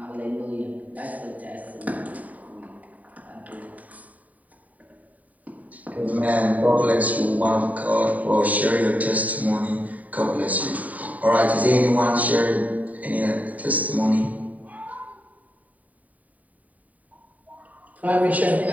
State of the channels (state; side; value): late; left; 0.072 ms